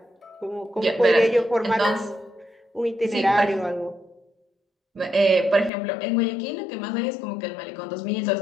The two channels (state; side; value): drops out; right; at 5.7 s